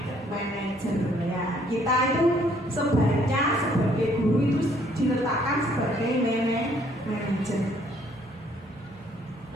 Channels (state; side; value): noise; right; hum, 27 dB below the sound